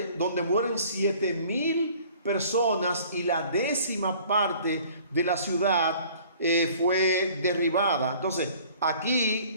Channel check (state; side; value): inverted; both; correlation -0.52